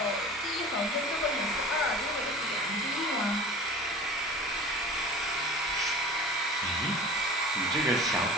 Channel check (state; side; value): normal; both; correlation 0.39